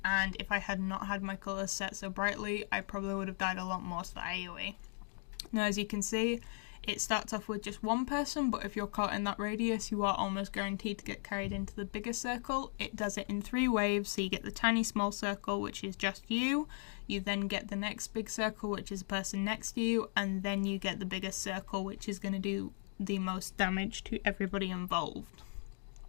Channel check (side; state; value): right; silent; 53 dB below the other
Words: and if I had not had my colours set so brightly, I probably would have died a lot more to the AoE. Now, as you can see, It starts off with just one person, but if you're caught in that radius, you are almost guaranteed to get carried into the bigger circle. It does it in 3 waves, so you get the tiny small circle, which is just you. You then get the next big circle, which is the person next to you, and then you get the biggest circle, which is going to do the most damage to everybody involved.